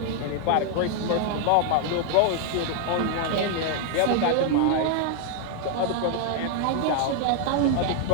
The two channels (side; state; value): both; different; correlation 0.00